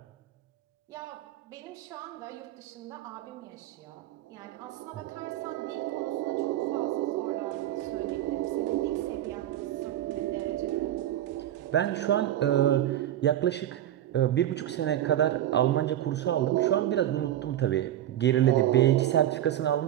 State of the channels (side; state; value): left; quieter; 12.4 dB